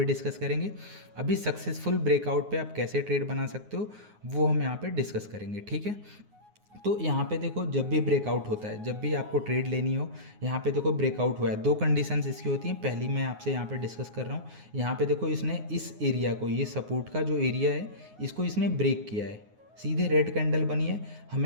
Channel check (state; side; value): late; left; 9.5 ms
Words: डिस्कस करेंगे। अभी सक्सेसफुल ब्रेकआउट पे आप कैसे ट्रेड बना सकते हो वो हम यहाँ पे डिस्कस करेंगे। ठीक है, तो यहाँ पे देखो, जब भी ब्रेकआउट होता है, जब भी आपको ट्रेड लेनी हो, यहाँ पे देखो ब्रेकआउट हुआ है, 2 कंडीशंस इसकी होती हैं। पहली मैं आपसे यहाँ पे डिस्कस कर रहा हूँ। यहाँ पे देखो, इसने इस एरिया को, ये सपोर्ट का जो एरिया है, इसको इसने ब्रेक किया है, सीधे रेड कैंडल बनी है।